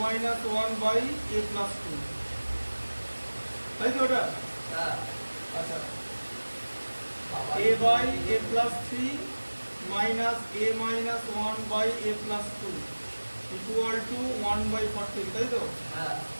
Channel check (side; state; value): both; inverted; correlation -1.00